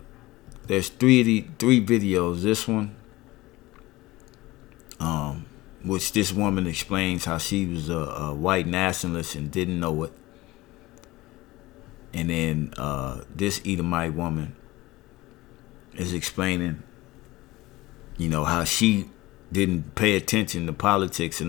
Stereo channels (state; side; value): quieter; right; 19.4 dB